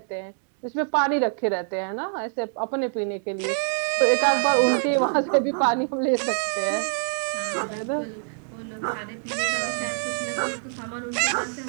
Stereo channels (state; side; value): silent; left; digital silence